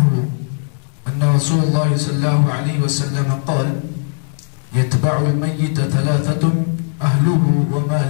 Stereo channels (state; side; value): silent; right; 66 dB below the other